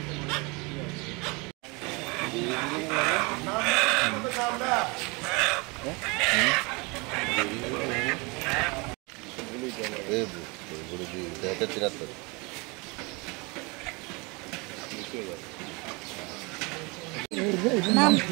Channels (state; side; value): quieter; left; 27.9 dB